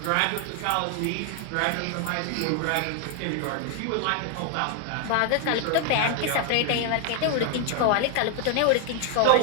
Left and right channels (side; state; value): both; different; correlation 0.00